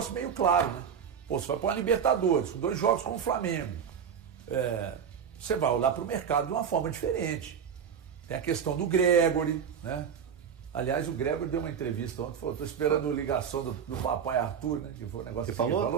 meio claro, né? Pô, você vai para a Libertadores, com 2 jogos com o Flamengo. Você vai olhar para o mercado de uma forma diferente. Tem a questão do Gregory, né? Aliás, o Gregory deu uma entrevista ontem, falou, estou esperando a ligação do papai Arthur, né? Que foi um negócio Você que falou? ele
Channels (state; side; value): quieter; left; 7.5 dB